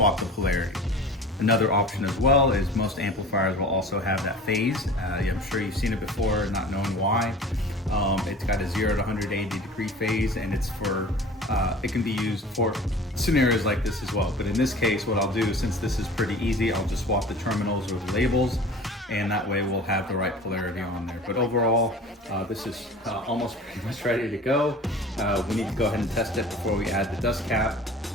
the polarity. Another option as well is most amplifiers will also have that phase. I'm sure you've seen it before, not knowing why. It's got a 0 to 180 degree phase, and it's for, it can be used for scenarios like this as well. But in this case, what I'll do, since this is pretty easy, I'll just swap the terminals or the labels, and that way we'll have the right polarity on there. But overall, this is almost pretty much ready to go. We need to go ahead and test it before we add the dust cap.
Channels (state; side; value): normal; both; correlation 0.41